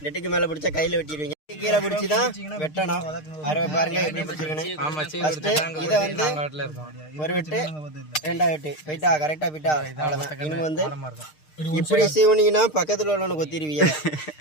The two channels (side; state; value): right; late; 6.5 ms